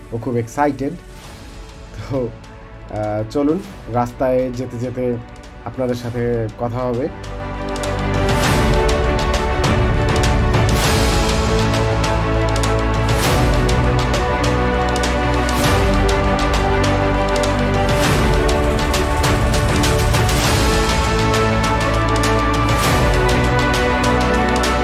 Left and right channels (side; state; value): both; identical; correlation 1.00